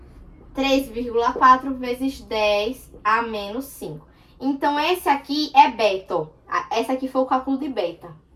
3,4 vezes 10 a menos 5. Então, esse aqui é beta, ó. Esse aqui foi o cálculo de beta,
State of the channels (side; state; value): both; identical; correlation 1.00